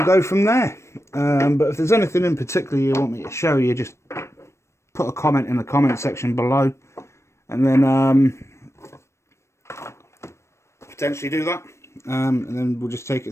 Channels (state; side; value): late; right; 0.13 ms